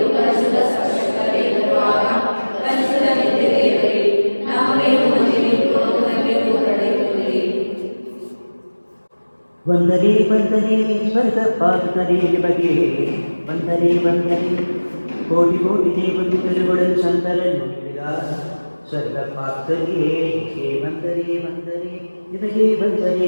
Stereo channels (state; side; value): inverted; both; correlation -1.00